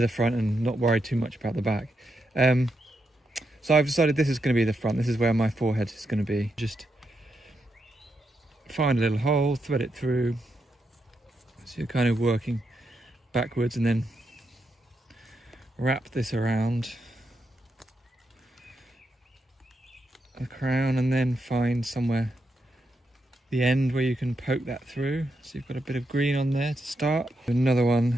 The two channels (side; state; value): both; normal; correlation 0.83